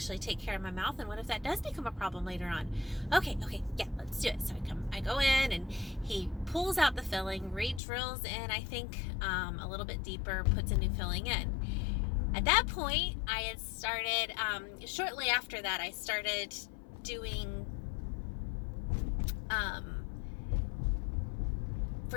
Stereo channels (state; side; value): drops out; right; at 7.8 s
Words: take care of my mouth, and what if that does become a problem later on? Okay, yeah, let's do it. So I go in, and he pulls out the filling, re-drills in, I think, a little bit deeper, puts a new filling in. At that point, I had started, shortly after that, I started doing